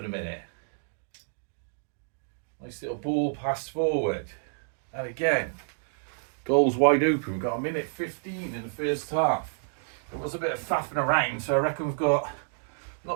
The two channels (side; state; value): left; silent; digital silence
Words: the minute. Nice little ball passed forward. And again, goal's wide open. We've got 1:15 in the first half. There was a bit of faffing around, so I reckon we've got